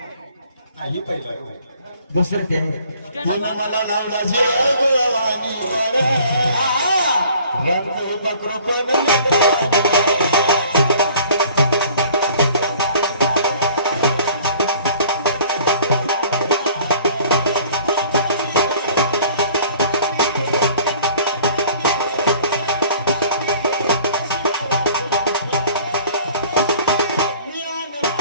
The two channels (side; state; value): both; inverted; correlation -0.52